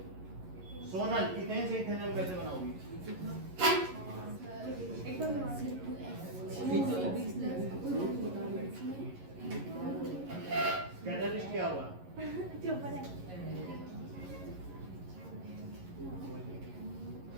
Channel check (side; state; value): left; late; 11 ms